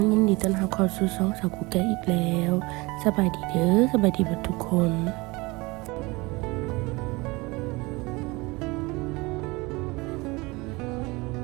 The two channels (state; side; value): quieter; left; 23.9 dB